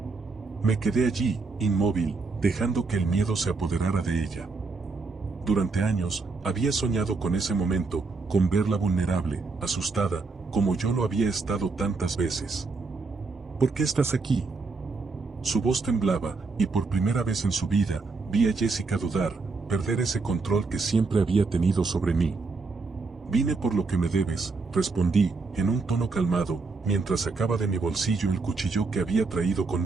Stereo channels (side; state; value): left; quieter; 4.1 dB